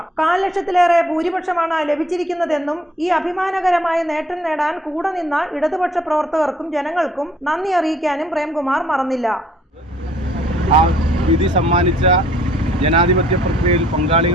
4 ലക്ഷത്തിലേറെ ഭൂരിപക്ഷമാണ് ലഭിച്ചിരിക്കുന്നതെന്നും ഈ അഭിമാനകരമായ നേട്ടം നേടാൻ കൂടെ നിന്ന ഇടതുപക്ഷ പ്രവർത്തകർക്കും ജനങ്ങൾക്കും നന്ദി അറിയിക്കാനും പ്രേംകുമാർ മറന്നില്ല. ആ വിധി സമ്മാനിച്ച ജനാധിപത്യ പ്രക്രിയയിൽ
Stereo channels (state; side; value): normal; both; correlation 0.61